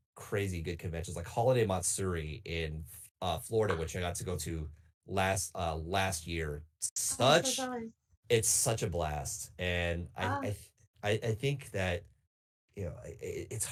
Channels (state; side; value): identical; both; correlation 1.00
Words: crazy good conventions like Holiday Matsuri in Florida, which I got to go to last year. Oh, I'm so Such jealous. It's such a blast, and Ah, I think that it's